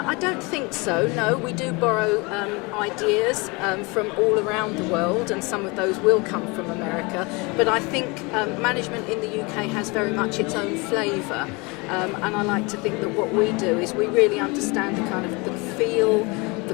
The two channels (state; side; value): quieter; right; 27.2 dB